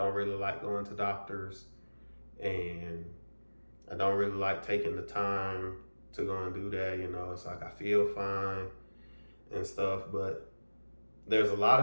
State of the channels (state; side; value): inverted; both; correlation -1.00